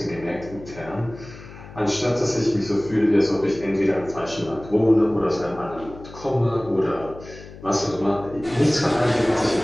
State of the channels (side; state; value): left; noise; hum, 17 dB below the sound